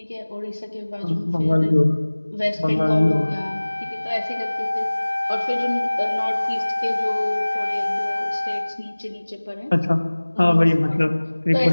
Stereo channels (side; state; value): both; inverted; correlation -1.00